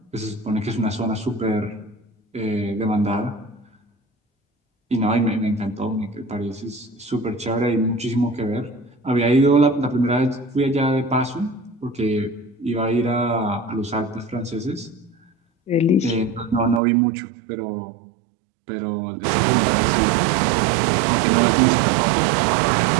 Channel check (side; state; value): left; drops out; at 16.8 s